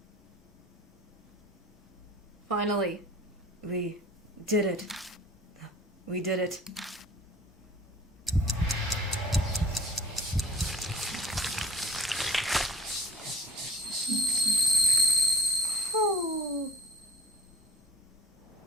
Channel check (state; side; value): normal; both; correlation 0.47